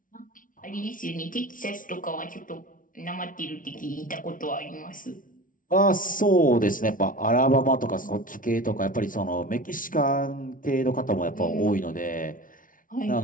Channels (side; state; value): right; late; 0.39 ms